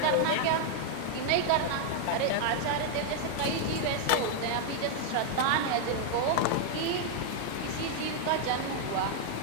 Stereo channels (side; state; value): both; different; correlation 0.00